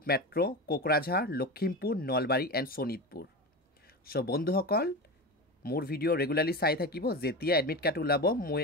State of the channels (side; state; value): both; normal; correlation 0.25